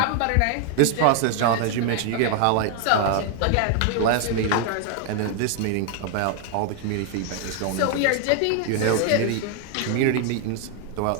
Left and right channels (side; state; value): both; different; correlation 0.00